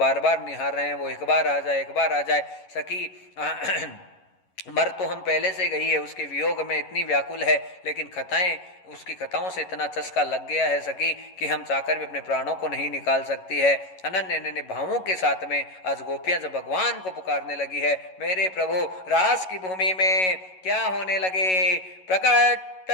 बार निहार रहे हैं, वो एक बार आ जाए, एक बार आ जाए। सखी मर तो हम पहले से गई है, उसके वियोग में इतनी व्याकुल है, लेकिन खताएं, उसकी कथाओं से इतना चस्का लग गया है सखी कि हम चाहकर भी अपने प्राणों को नहीं निकाल सकती है। अनन्य अनन्य भावों के साथ में आज गोपियां जब भगवान को पुकारने लगी है, मेरे प्रभु रास की भूमि में क्या होने लगे। प्रकट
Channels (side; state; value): right; late; 11 ms